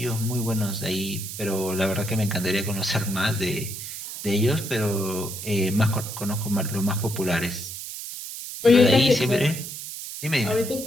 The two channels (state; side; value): noise; right; hiss, 9 dB below the sound